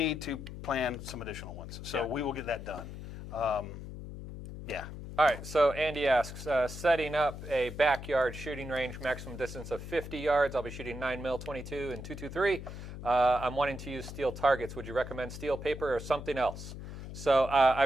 to plan some additional ones. So we will get that done. All right, so Andy asks, setting up a backyard shooting range, maximum distance of 50 yards. I'll be shooting 9mm 22 and .223. I'm wanting to use steel targets. Would you recommend steel, paper, or something else? So I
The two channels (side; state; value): left; noise; hum, 10 dB below the sound